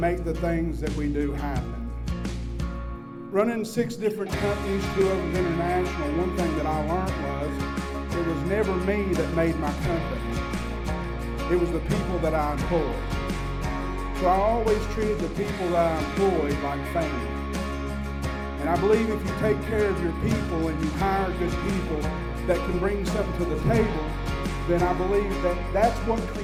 the things that we do happen. Running 6 different companies, 2 of them international, one thing that I learned was it was never me that made my company. It was the people that I employed. So I always treated the people that I employed like family. And I believe if you take care of your people and you hire good people that can bring something to the table, then I believe that that's what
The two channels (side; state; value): both; identical; correlation 1.00